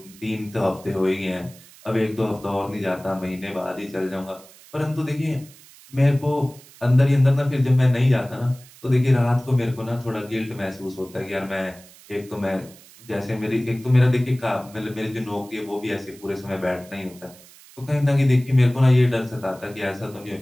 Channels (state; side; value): noise; right; hiss, 23 dB below the sound